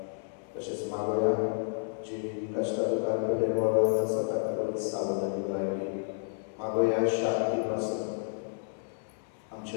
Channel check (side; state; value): right; silent; 57 dB below the other